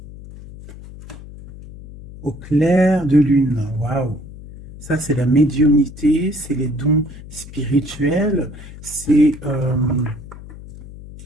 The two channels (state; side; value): noise; left; hum, 16 dB below the sound